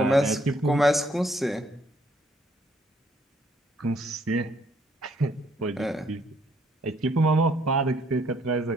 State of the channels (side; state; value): both; normal; correlation 0.67